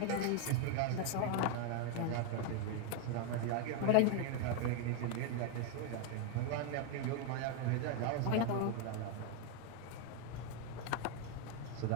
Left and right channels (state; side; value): different; both; correlation 0.01